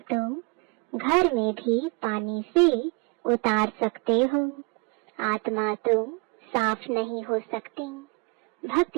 तुम घर में भी पानी से उतार सकते हो। आत्मा तुम साफ नहीं हो सकती।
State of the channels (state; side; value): quieter; left; 31.2 dB